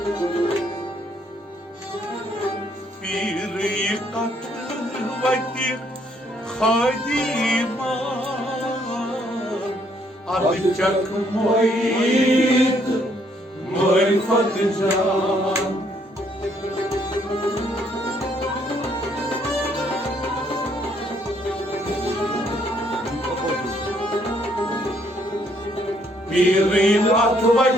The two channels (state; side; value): normal; both; correlation 0.69